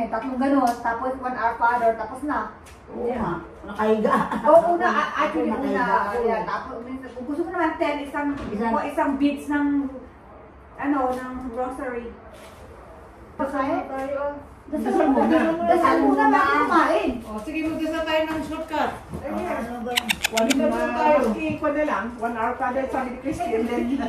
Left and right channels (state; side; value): identical; both; correlation 1.00